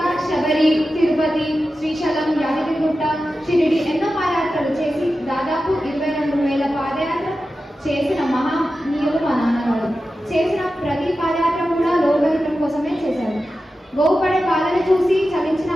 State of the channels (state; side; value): normal; both; correlation 0.92